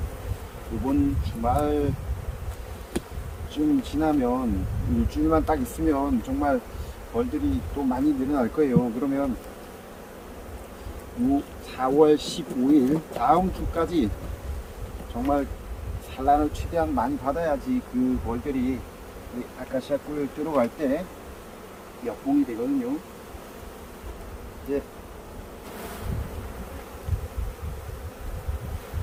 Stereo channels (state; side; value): identical; both; correlation 1.00